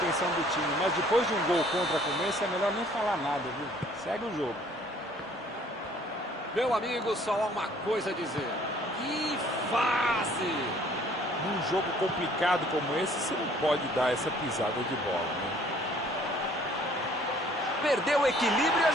do time, mas depois de um gol contra como esse, é melhor nem falar nada, viu? Segue o jogo. Meu amigo, só há uma coisa a dizer. Que fase! Num jogo complicado como esse, você não pode dar essa pisada de bola, né? Perdeu o equilíbrio e a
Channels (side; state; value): both; normal; correlation 0.57